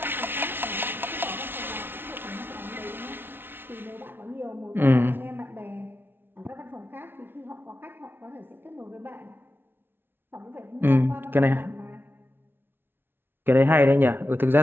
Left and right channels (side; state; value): left; late; 0.11 ms